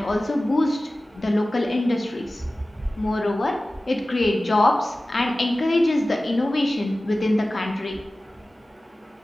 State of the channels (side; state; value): both; normal; correlation 0.96